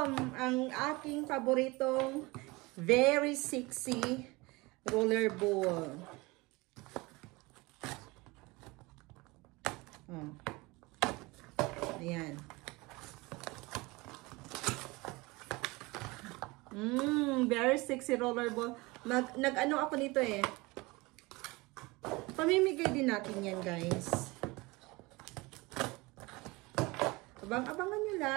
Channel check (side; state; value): left; quieter; 23.6 dB